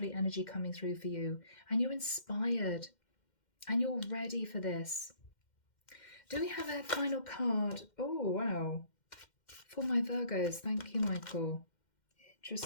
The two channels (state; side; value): late; right; 2.1 ms